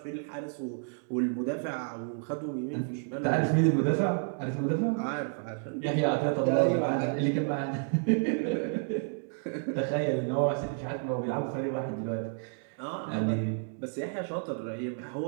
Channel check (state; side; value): silent; left; 57 dB below the other